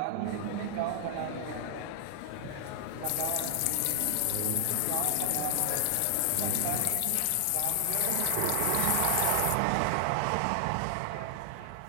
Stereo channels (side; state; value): both; different; correlation 0.00